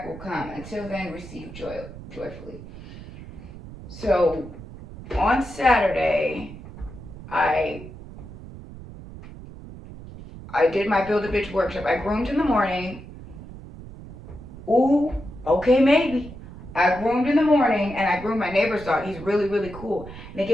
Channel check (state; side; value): noise; right; rumble, 14 dB below the sound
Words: will come. Until then, receive joyfully. So, on Saturday, I did my Build a Bitch workshop. I groomed in the morning. Ooh, okay, maybe. I groomed in the morning, and I groomed my neighbor's dog. He's really, really cool. And they